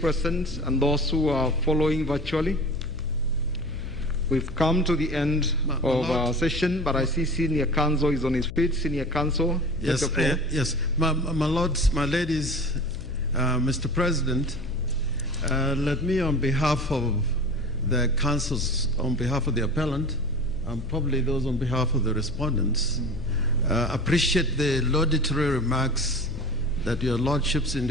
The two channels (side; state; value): left; noise; hum, 11 dB below the sound